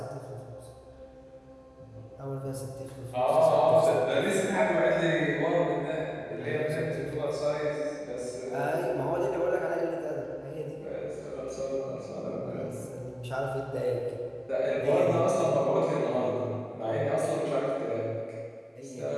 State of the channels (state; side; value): identical; both; correlation 1.00